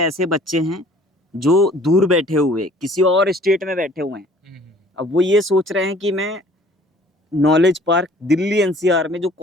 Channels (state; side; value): normal; both; correlation 0.53